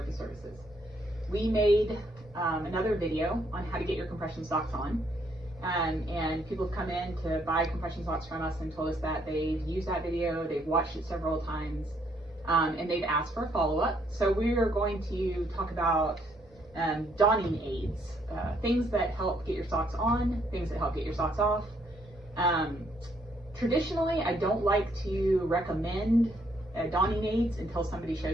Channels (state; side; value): normal; both; correlation 0.70